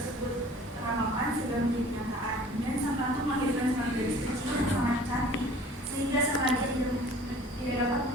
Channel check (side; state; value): both; normal; correlation 0.48